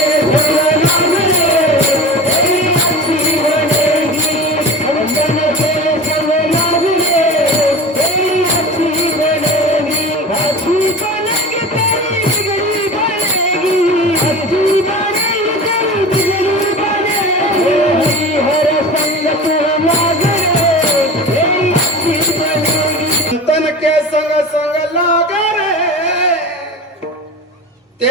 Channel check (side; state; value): both; normal; correlation 0.33